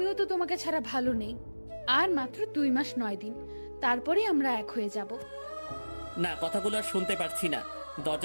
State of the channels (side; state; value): both; inverted; correlation -1.00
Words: তো তোমাকে ছাড়া ভালো নেই। আর মাত্র 2 মাস 9 দিন, তারপরে আমরা এক হয়ে যাব। না, কথাগুলো আর শুনতে পারছি না।